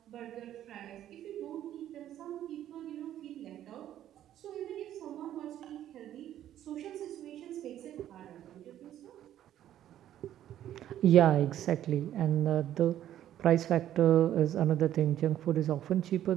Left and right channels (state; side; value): quieter; left; 11.7 dB